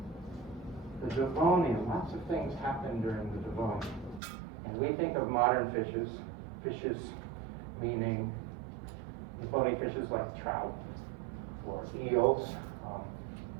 the Devonian, lots of things happened during the Devonian. And we think of modern fishes meaning bony fishes like trout, or eels,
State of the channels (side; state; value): left; drops out; at 4.2 s